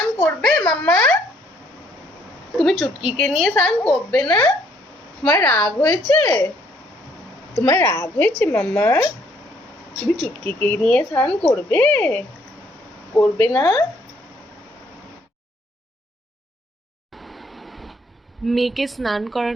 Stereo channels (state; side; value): normal; both; correlation 0.66